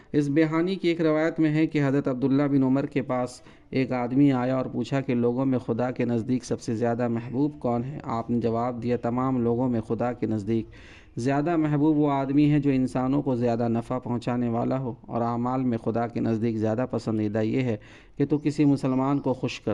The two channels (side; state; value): both; identical; correlation 1.00